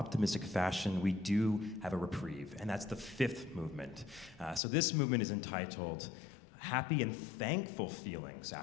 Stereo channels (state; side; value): drops out; right; at 4.6 s